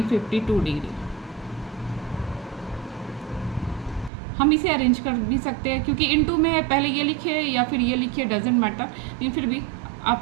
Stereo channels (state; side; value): drops out; left; at 4.1 s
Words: 52 degree. हम इसे अरेंज कर भी सकते हैं, क्योंकि इंटू में है, पहले ये लिखे या फिर ये लिखे डजेंट मैटर, लेकिन फिर भी आप